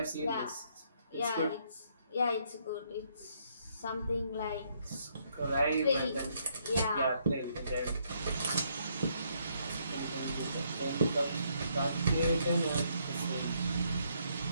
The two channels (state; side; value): inverted; both; correlation -0.71